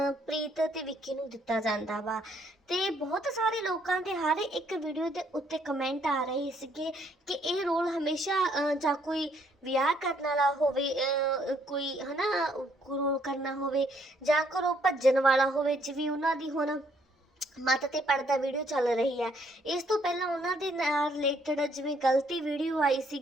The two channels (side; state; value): both; normal; correlation 0.68